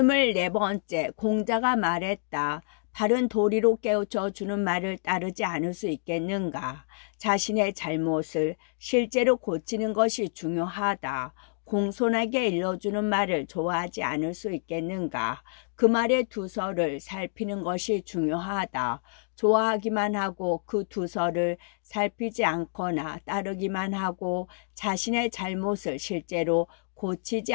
공자가 말했다. 바른 도리로 깨우쳐 주는 말을 따르지 않을 수 있겠는가. 자신의 잘못을 실제로 고치는 것이 중요하다. 공손하게 일러주는 말을 좋아하지 않을 수 있겠는가. 그 말의 두서를 살피는 것이 중요하다. 좋아하기만 하고 그 두서를 살피지 않거나 따르기만 하고 자신의 잘못을 실제로 고치지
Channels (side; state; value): right; silent; digital silence